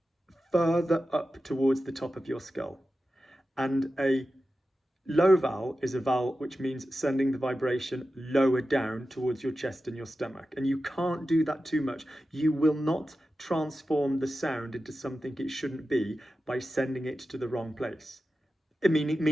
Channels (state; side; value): normal; both; correlation 0.93